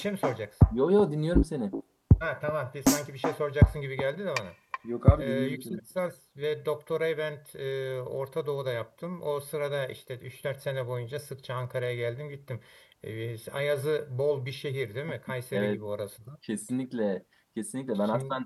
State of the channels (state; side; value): identical; both; correlation 1.00